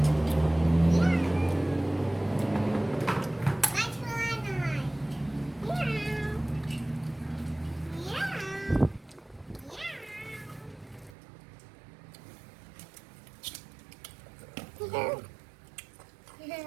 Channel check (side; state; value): left; drops out; at 11.2 s